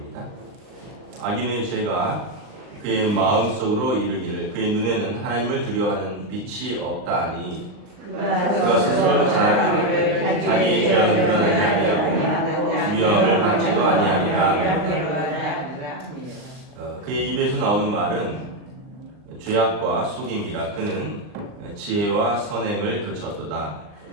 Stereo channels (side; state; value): left; late; 39 ms